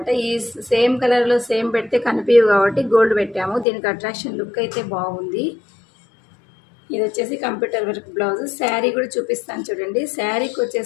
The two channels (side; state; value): right; drops out; at 3.7 s